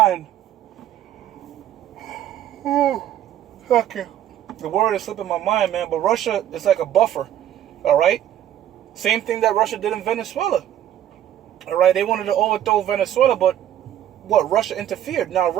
Okay, the word is slipping my mind, man. But Russia is like a buffer. All right. Same thing that Russia did in Venezuela. All right, they wanted to overthrow Venezuela, but Russia interfered. Now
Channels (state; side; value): quieter; left; 11.3 dB